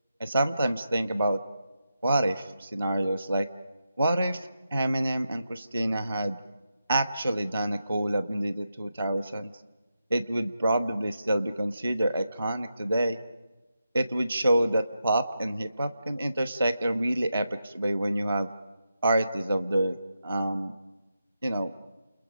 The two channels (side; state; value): both; inverted; correlation -0.86